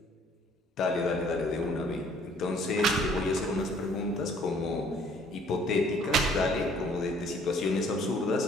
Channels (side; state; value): both; normal; correlation 0.59